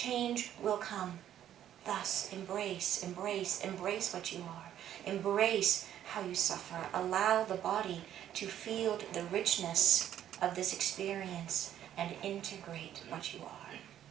will come. Thus, embrace, embrace, embrace what you are. Embrace how you suffer. Allow the body to feel the richness of this experience and integrate what you are.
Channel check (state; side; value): quieter; left; 11.0 dB